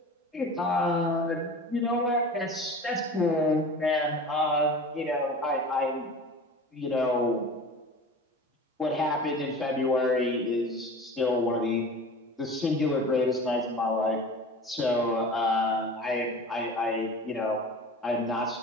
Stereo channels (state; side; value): normal; both; correlation 0.37